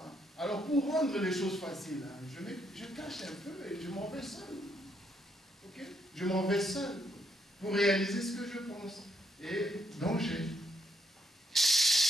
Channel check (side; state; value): both; normal; correlation 0.75